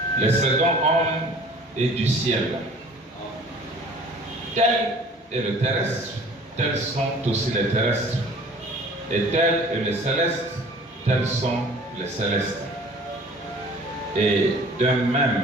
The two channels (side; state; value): both; normal; correlation 0.48